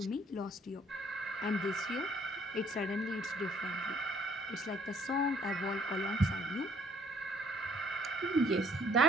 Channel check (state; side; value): normal; both; correlation 0.61